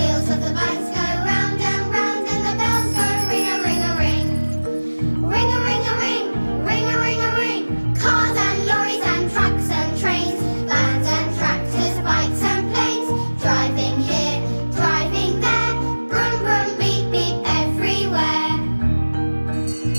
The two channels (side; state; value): both; inverted; correlation -1.00